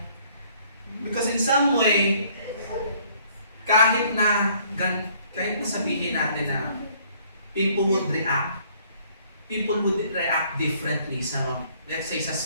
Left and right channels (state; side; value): inverted; both; correlation -0.62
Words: Because in some way, kahit na sabihin natin na people would react differently sa, let's say, sa